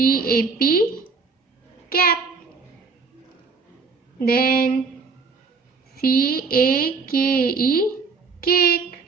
cap. Then CAKE, cake.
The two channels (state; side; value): quieter; left; 4.6 dB